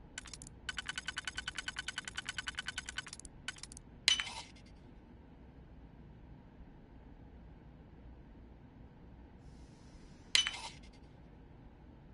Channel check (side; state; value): both; identical; correlation 1.00